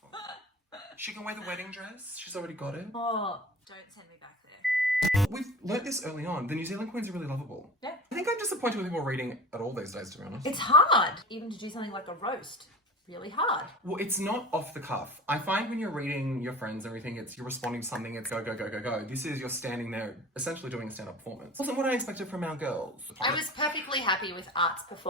She can wear the wedding dress. She's already got it. Oh, don't send me back there. We've learnt this early on. The New Zealand queens are really lovable. Yeah. I think I'm disappointed with people reading at all these days, to be honest. It's hard, even to do something like a roast. Really hard. Well, it's not off the cuff. I find when you're reading your friends and everything, you're responding to something, it's go, go, go, go, go. This is you're standing there essentially doing a stand-up performance. Wasn't what I expected from our girls. I was perfectly happy with Art's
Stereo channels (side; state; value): both; normal; correlation 0.36